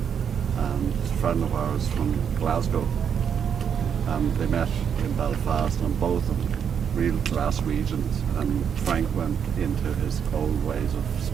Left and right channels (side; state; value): left; quieter; 7.6 dB